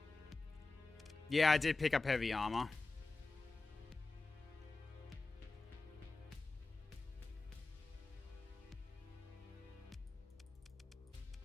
Yeah, I did pick up heavy armor.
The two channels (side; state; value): right; quieter; 3.6 dB